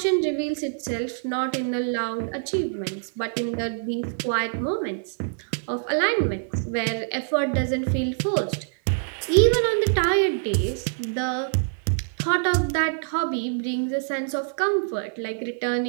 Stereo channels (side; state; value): left; silent; digital silence